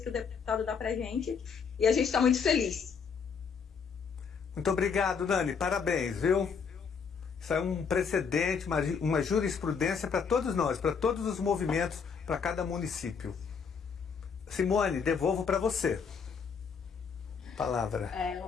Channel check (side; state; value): right; quieter; 6.1 dB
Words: o deputado dá para a gente, e a gente está muito feliz. Muito obrigado, Nani, parabéns, viu? Isso é um precedente, uma jurisprudência para todos nós, para todos os movimentos, para cada município. Simone, devolvo para você. Palavra.